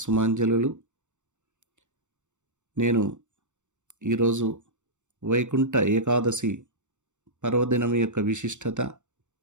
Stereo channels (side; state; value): left; late; 0.85 ms